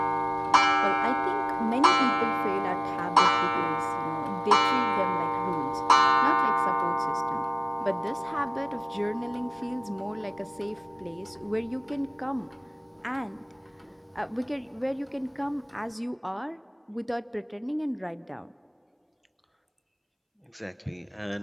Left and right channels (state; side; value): identical; both; correlation 1.00